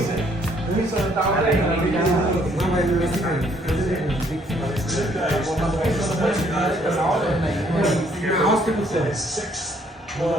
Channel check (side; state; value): both; normal; correlation 0.66